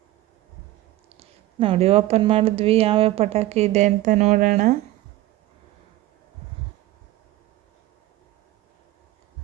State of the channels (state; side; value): quieter; left; 16.2 dB